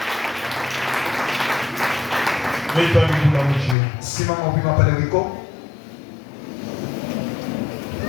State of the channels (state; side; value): drops out; right; at 3.8 s